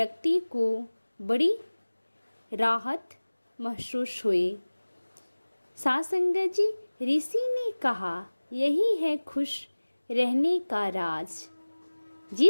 को बड़ी राहत महसूस हुई। साथ संगत जी, ऋषि ने कहा, यही है खुश रहने का राज।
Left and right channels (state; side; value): inverted; both; correlation -1.00